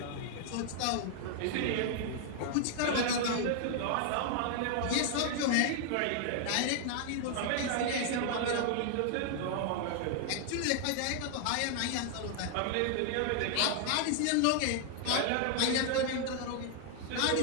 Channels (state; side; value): different; both; correlation 0.00